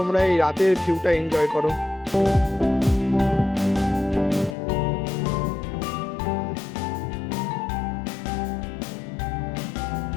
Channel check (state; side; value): drops out; right; at 4.5 s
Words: এই রাতের ভিউটা এনজয় করো।